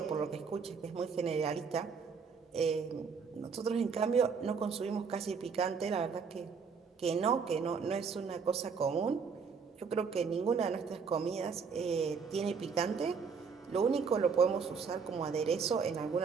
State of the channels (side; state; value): left; quieter; 5.7 dB